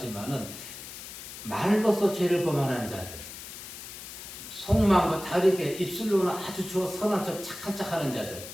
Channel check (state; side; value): noise; left; hiss, 12 dB below the sound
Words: 말로서 죄를 범하는 자들, 속마음과 다르게 입술로는 아주 선한 척 착한 척 하는 자들,